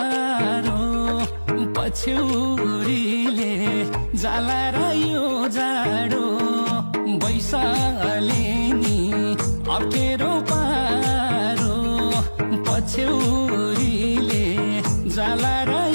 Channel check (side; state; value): both; inverted; correlation -1.00